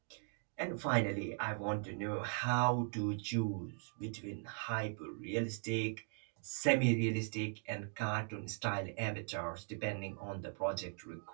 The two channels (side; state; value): left; silent; 51 dB below the other